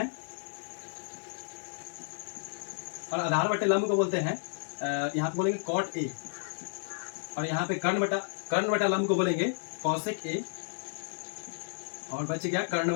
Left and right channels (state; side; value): silent; right; 57 dB below the other